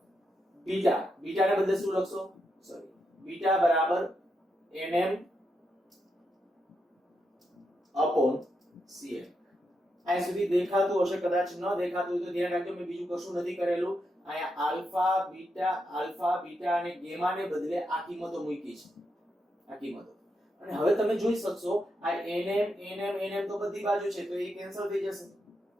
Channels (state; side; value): normal; both; correlation 0.83